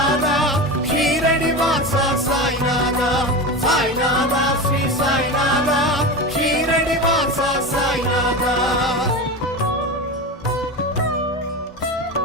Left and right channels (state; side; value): normal; both; correlation 0.24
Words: ஷீரடி வாசா சாய்நாதா சாய்நாதா ஸ்ரீ சாய்நாதா ஷீரடி வாசா சாய்நாதா